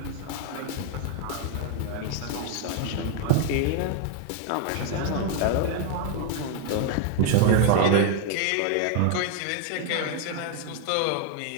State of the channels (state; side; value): different; both; correlation 0.00